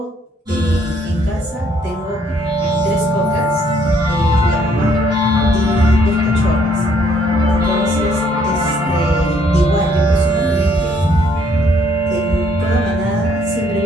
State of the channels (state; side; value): normal; both; correlation 0.66